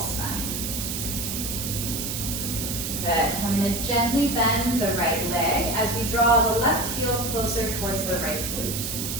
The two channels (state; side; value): noise; right; hiss, 3 dB below the sound